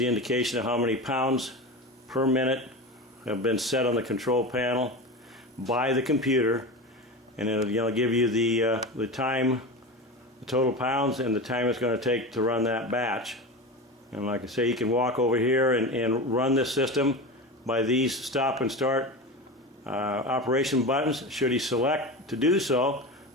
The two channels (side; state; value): both; normal; correlation 0.26